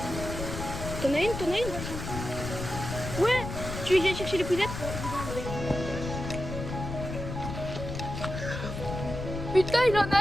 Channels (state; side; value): noise; left; rumble, 6 dB below the sound